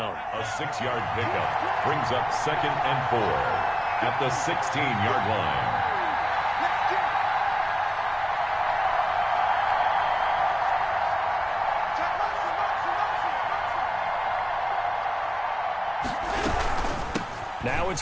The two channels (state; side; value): identical; both; correlation 1.00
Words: A 6-yard pickup brings up 2nd and 4 at the 16-yard line. Now it's